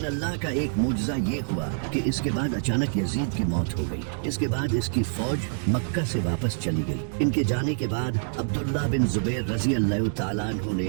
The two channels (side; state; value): left; silent; digital silence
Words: अल्लाह का एक मुजज़ा ये हुआ कि इसके बाद अचानक यजीद की मौत हो गई। इसके बाद इसकी फौज मक्का से वापस चली गई। इनके जाने के बाद अब्दुल्लाह बिन जुबैर रजी अल्लाह तआला अन्हु ने